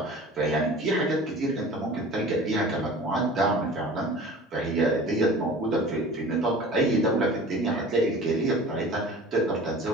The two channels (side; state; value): both; normal; correlation 0.42